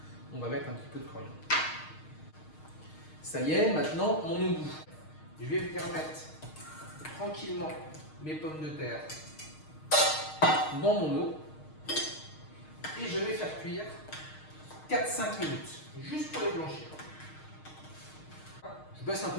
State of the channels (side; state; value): right; late; 6.5 ms